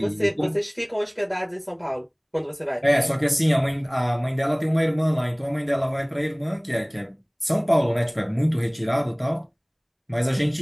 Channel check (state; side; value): identical; both; correlation 1.00